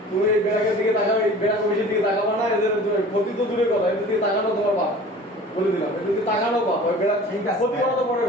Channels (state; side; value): normal; both; correlation 0.43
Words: তুমি এই বেড়াকের দিকে তাকাবে এই বেড়া কমিশনের দিকে তাকাবা না এদের ক্ষতি তো দূরের কথা এদের দিকে তাকানো তোমার বাপ বলে দিলাম এদের দিকে তাকানো বাপ ওই বেড়া ঠিক আছে। ক্ষতি করা তো পরের